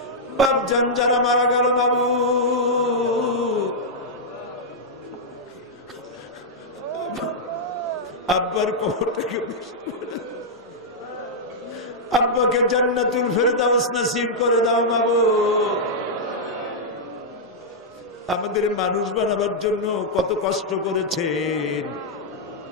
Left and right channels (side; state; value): both; normal; correlation -0.06